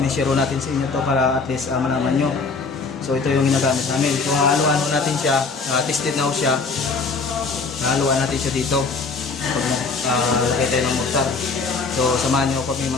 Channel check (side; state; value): right; quieter; 4.4 dB